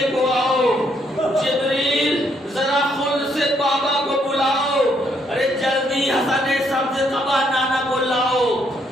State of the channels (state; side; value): normal; both; correlation 0.72